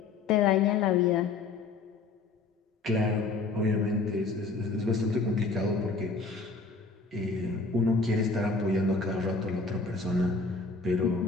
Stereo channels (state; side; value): quieter; right; 4.0 dB